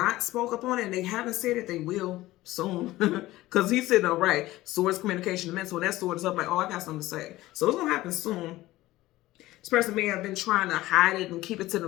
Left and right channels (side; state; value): right; quieter; 17.1 dB